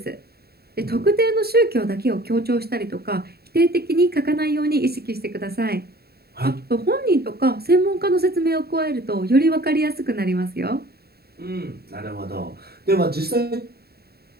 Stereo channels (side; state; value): left; late; 0.46 ms